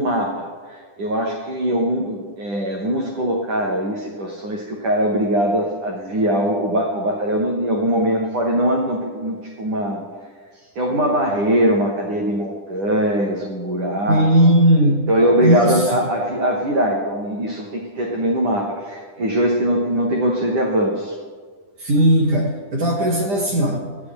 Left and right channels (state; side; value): late; left; 10 ms